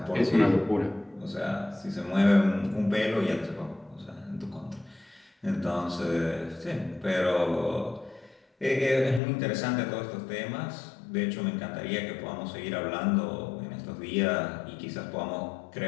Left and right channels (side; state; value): right; drops out; at 9.2 s